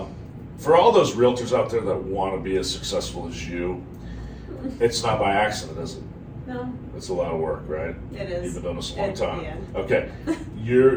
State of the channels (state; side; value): identical; both; correlation 1.00